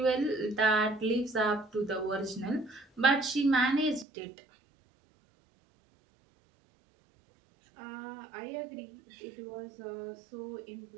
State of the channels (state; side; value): drops out; left; at 4.0 s